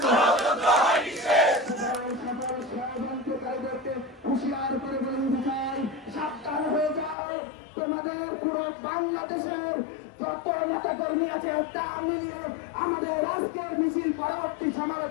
হুঁশিয়ার করে বলতে চাই, সাবধান হয়ে যাও। তোমাদের পুরো বাংলাদেশের যত নেতা কর্মী আছে তা মিলিয়ে আমাদের আজকের মিছিল পরবর্তী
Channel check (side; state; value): right; drops out; at 7.2 s